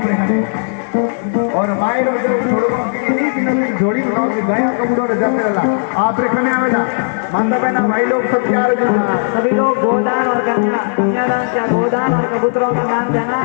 और मायरो जो जोड़ी बनाओ कि गाय कमजोर जंगला आप रे खने आवेला माता बहना भाई लोग सब तैयार हो सभी लोग गोदान और कन्या कन्यादान क्या गोदान और कबूतरों का दान देना।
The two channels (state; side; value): silent; right; digital silence